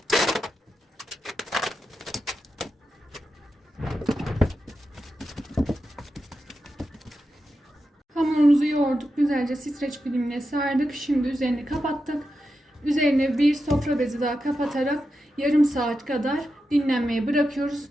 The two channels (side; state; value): both; normal; correlation 0.89